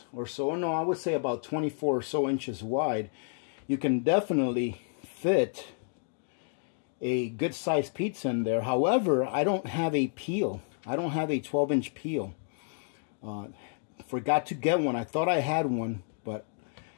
or so. No, I would say about 24 or so inches wide. You can definitely fit a good sized pizza in there. However, I don't have a peel. I don't have a 12-inch peel. Forgot to get one. I thought I had one, but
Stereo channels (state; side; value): silent; right; digital silence